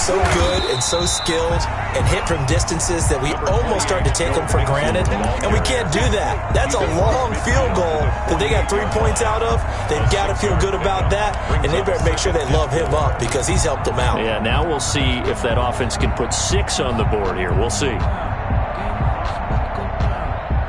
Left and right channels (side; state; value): both; identical; correlation 1.00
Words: good and so skilled and hit from distances that we almost start to take them for granted, and we can't do that. That's a long field goal that they got 3 points out of. They've got to feel good about that, and they better make sure they love him up because he's helped them out. Yeah, now we'll see if that offense can put 6 on the board here. We'll see.